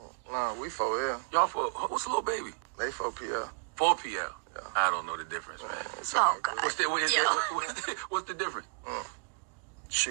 No, we 4L. Y'all what's Lil Baby? They 4PL. 4PL. Yeah. I don't know the difference, man. Oh, God. What's the difference?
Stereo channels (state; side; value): quieter; left; 39.8 dB